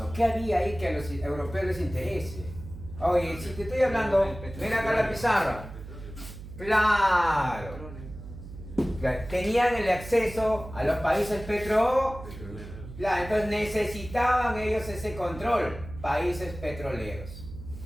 ¿Qué había ahí que a los europeos les interese? Oye, si te estoy hablando, mira acá la pizarra. Claro. Tenían el acceso a los países petroleros. Claro, entonces necesitaban ellos ese control. Países petroleros.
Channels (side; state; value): right; noise; hum, 13 dB below the sound